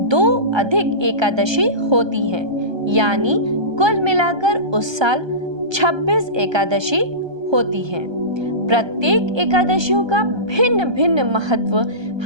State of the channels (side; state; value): left; late; 1.3 ms